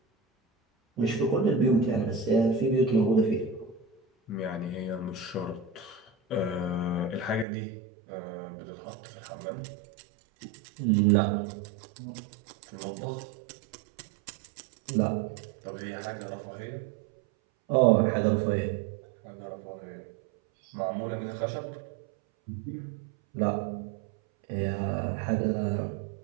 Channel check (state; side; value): drops out; left; at 7.5 s